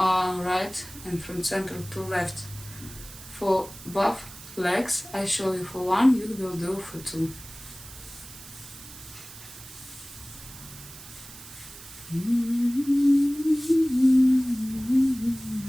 and from central to left. For both legs, I show you for one, you will do for two.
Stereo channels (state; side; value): noise; right; hiss, 16 dB below the sound